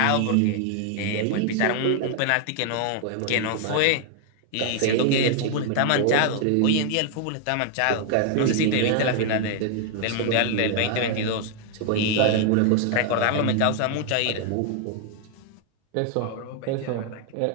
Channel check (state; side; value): different; both; correlation 0.00